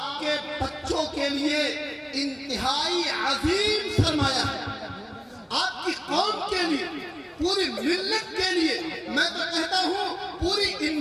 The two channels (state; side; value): identical; both; correlation 1.00